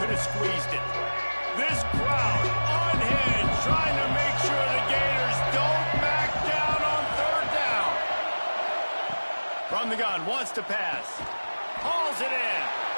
could have squeezed it. This crowd unhinged, trying to make sure the Gators don't back down on third down. From the gun, wants to pass. Hauls it in.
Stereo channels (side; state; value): both; inverted; correlation -1.00